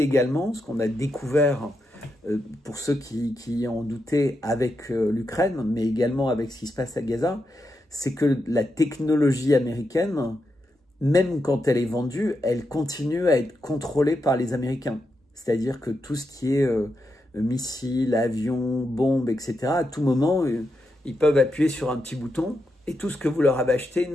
également, ce qu'on a découvert pour ceux qui en doutaient avec l'Ukraine, mais également avec ce qui se passe à Gaza, c'est que la technologie américaine, même quand elle est vendue, elle continue à être contrôlée par les Américains. C'est-à-dire que tout ce qui est missiles, avions, bombes, etc., à tout moment, ils peuvent appuyer sur un petit bouton et tout ce que vous leur avez acheté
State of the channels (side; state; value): both; normal; correlation 0.85